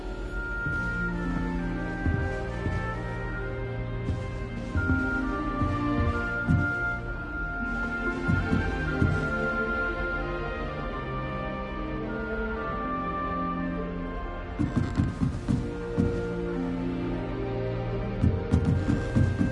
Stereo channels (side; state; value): both; identical; correlation 1.00